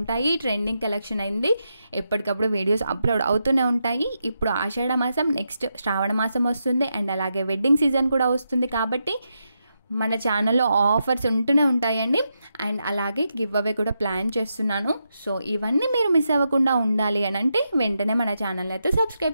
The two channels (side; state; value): both; inverted; correlation -0.85